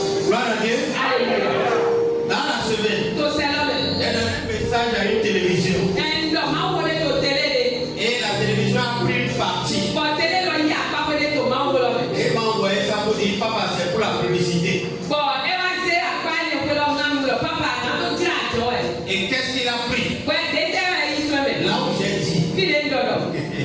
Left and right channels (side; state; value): both; identical; correlation 1.00